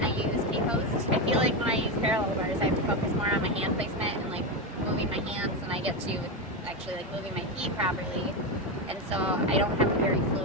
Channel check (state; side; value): normal; both; correlation 0.12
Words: I use K-Post. I feel like when I use parallel bars, I have to focus more on my hand placement and like moving my hands, and I get to actually like moving my feet properly. And so I don't have a very